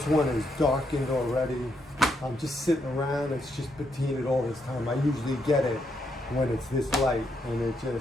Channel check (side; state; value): both; normal; correlation 0.78